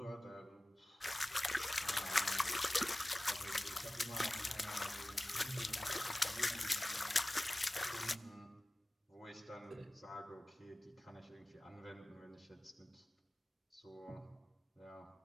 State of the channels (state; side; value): normal; both; correlation 0.97